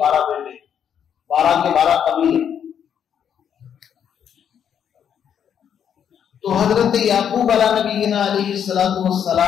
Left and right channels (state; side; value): quieter; right; 8.6 dB